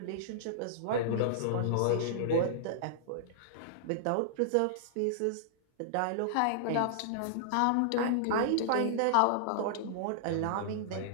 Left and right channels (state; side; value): different; both; correlation -0.01